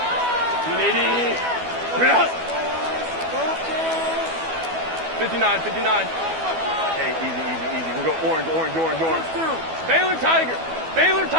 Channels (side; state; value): left; late; 12 ms